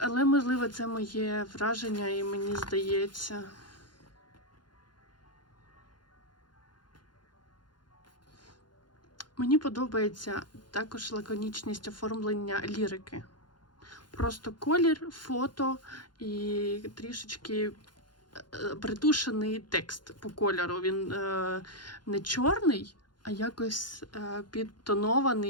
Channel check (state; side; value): late; right; 0.71 ms